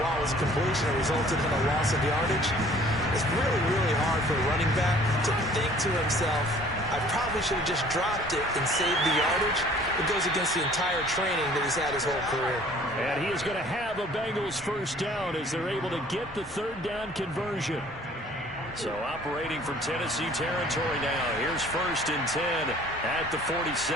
while it was a completion, it resulted in a loss of yardage. It's really, really hard for a running back to think to himself, I probably should have just dropped it and saved the yardage. It goes against the entire training that he's had his whole career. And he is going to have a Bengals first down as they're able to get the 3rd down conversion. So operating from Tennessee territory now. Here's 1st and 10 at the 47.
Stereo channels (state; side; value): normal; both; correlation 0.53